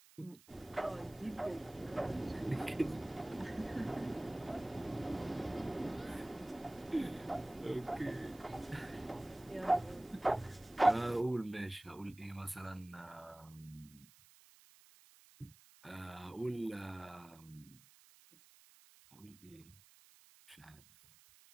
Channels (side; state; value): right; noise; hiss, 24 dB below the sound